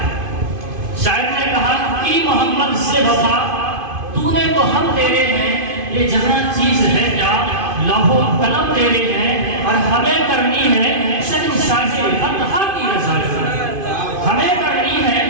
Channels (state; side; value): late; left; 2.5 ms